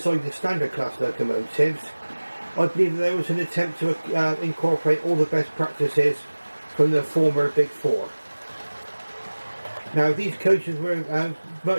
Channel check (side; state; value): both; inverted; correlation -1.00